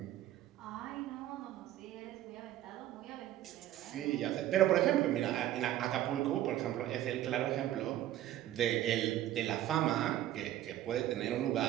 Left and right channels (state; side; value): quieter; left; 13.1 dB